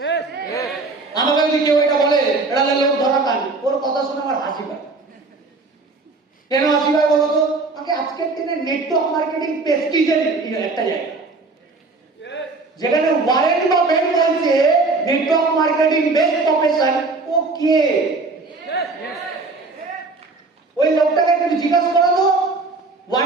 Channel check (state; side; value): quieter; left; 3.7 dB